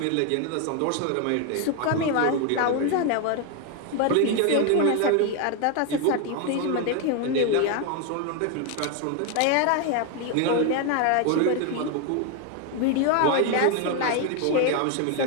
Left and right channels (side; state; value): both; different; correlation 0.01